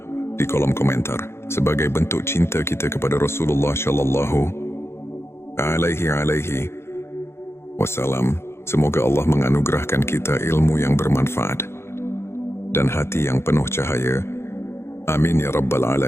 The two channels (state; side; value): late; right; 0.12 ms